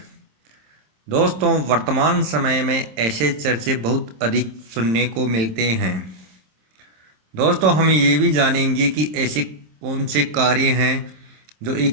दोस्तों, वर्तमान समय में ऐसे चर्चे बहुत अधिक सुनने को मिलते हैं। दोस्तों, हम ये भी जानेंगे कि ऐसे कौन से कार्य हैं जो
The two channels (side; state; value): left; late; 26 ms